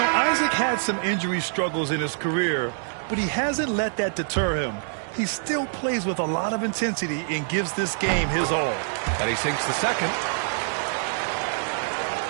Isaac had some injury struggles in his career, but he hasn't let that deter him. He still plays with a lot of intensity and gives this game his all. And he sinks the second.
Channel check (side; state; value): left; silent; 62 dB below the other